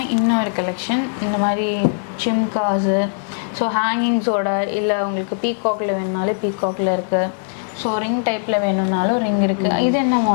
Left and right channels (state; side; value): silent; right; digital silence